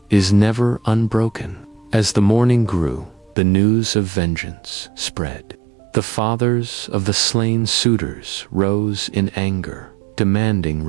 is never unbroken. As the morning grew, the news of vengeance spread. The fathers of the slain suitors rose in anger, demanding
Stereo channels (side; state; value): left; drops out; at 3.4 s